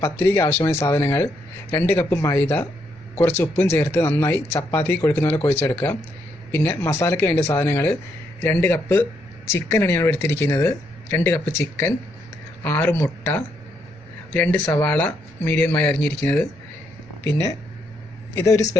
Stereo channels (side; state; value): both; normal; correlation 0.76